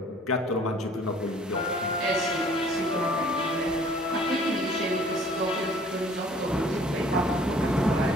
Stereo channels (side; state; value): both; normal; correlation 0.54